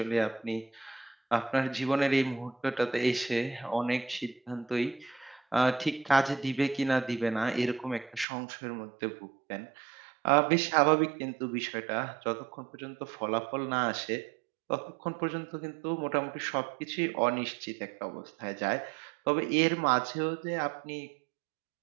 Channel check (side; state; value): left; drops out; at 8.2 s